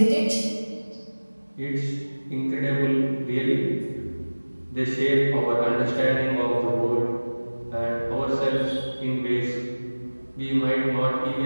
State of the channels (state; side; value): inverted; both; correlation -1.00